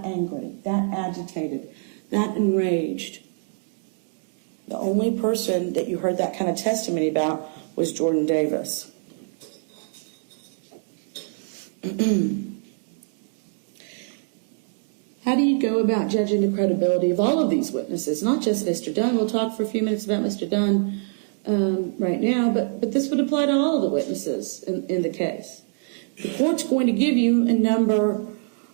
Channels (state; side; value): silent; left; 62 dB below the other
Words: angry, that agitated, that enraged. The only person that you heard that kind of testimony about was Jordan Davis. How do you go about judging the credibility of all of these witnesses? Not just Mr. Dunn. We'll talk for a few minutes about Mr. Dunn right now, but this would apply to all of the witnesses in the case. The court's going to give you a number